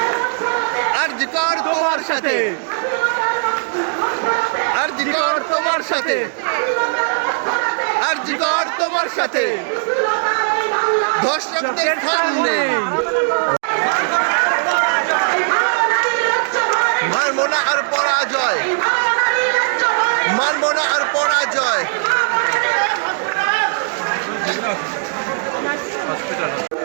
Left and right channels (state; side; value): silent; left; digital silence